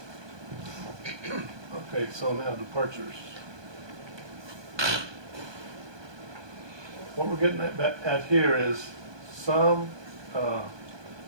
Okay, so now departures. What we're getting at here is some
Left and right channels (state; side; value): late; left; 1.2 ms